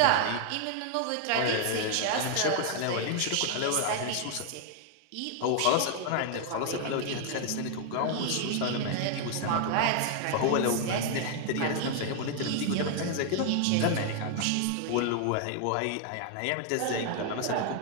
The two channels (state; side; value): different; both; correlation 0.00